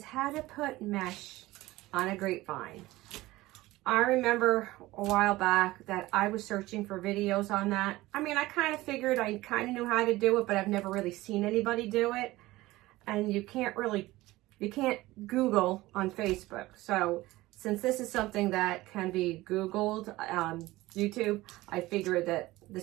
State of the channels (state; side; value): quieter; left; 18.5 dB